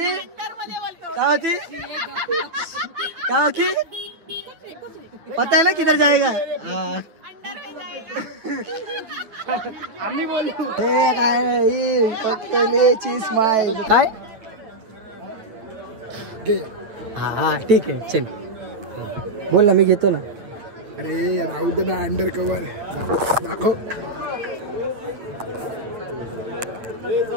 पता है ना किधर जाएगा. हे काय फक्त स्माइल काय. हा ठीक आहे चल बोल ना मी घेतो ना. अरे राहू दे ना अंडर कवर दाखव.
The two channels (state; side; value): late; left; 8.8 ms